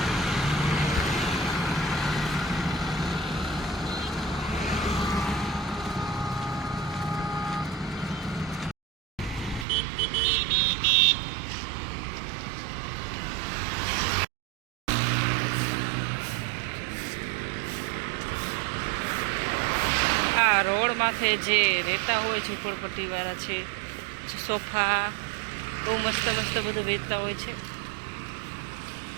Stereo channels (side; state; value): left; drops out; at 9.7 s